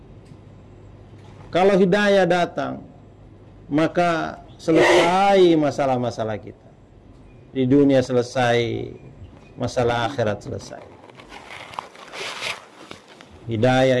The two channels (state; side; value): identical; both; correlation 1.00